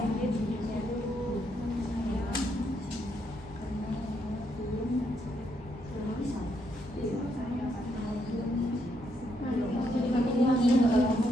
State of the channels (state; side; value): normal; both; correlation 0.76